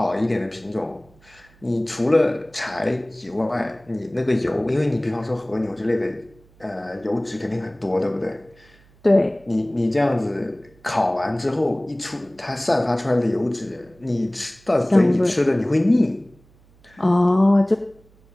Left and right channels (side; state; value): right; noise; hum, 29 dB below the sound